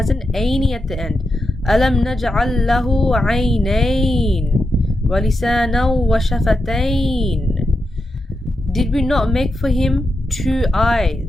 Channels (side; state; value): both; normal; correlation 0.87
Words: an aini at the end. Alam naj'al lahu aynayn wa lisanan wa shafatayn. Did we not make for him two